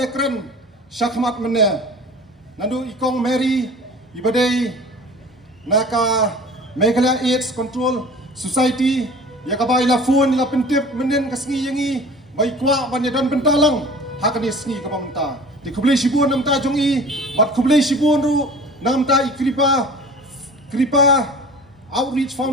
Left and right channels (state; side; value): normal; both; correlation 0.42